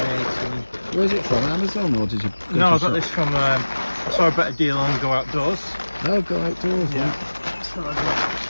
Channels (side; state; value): both; inverted; correlation -1.00